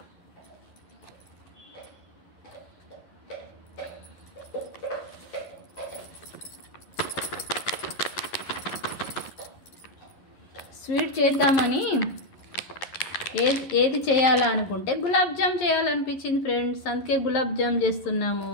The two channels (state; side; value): late; right; 11 ms